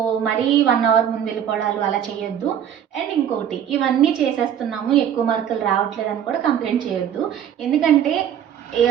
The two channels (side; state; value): left; quieter; 9.4 dB